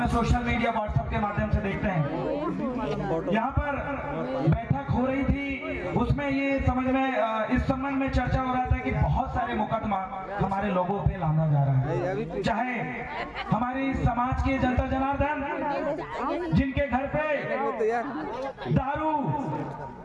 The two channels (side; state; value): both; identical; correlation 1.00